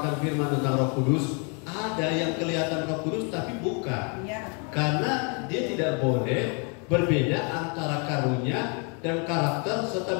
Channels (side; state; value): right; quieter; 36.3 dB